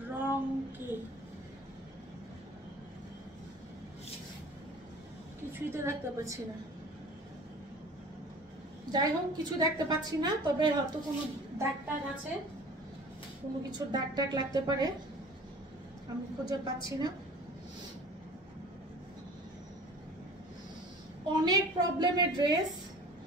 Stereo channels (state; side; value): normal; both; correlation 0.44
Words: রং কি কিছুই তো দেখতে পাচ্ছি না। যাই হোক, কিছু দেখতে পাচ্ছি না, তবে হয়তো কোনো দাগ টাগ আছে, কোনো কিছুর দাগ টাগ লাগতে পারে, আমি খুঁজে পাচ্ছি না। অনেক প্রবলেমের ড্রেস,